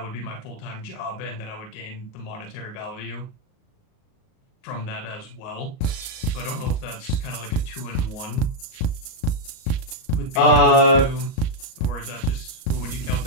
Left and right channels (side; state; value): right; late; 38 ms